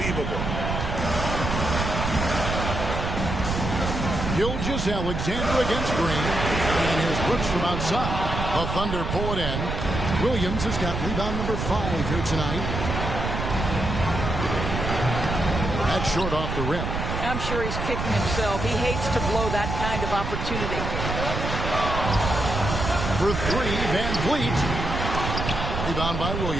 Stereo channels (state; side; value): noise; right; rumble, 3 dB below the sound